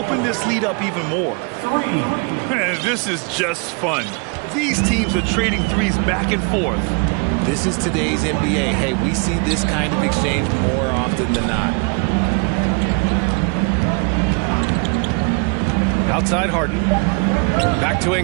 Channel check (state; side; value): quieter; left; 34.2 dB